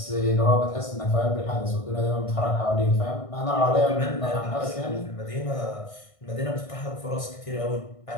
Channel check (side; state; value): right; late; 1.6 ms